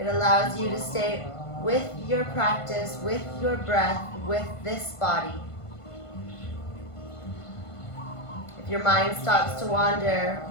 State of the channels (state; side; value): late; right; 1.5 ms